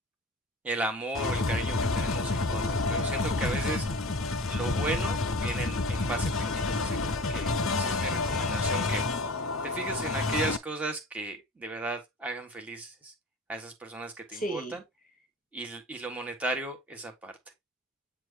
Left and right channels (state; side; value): normal; both; correlation 0.39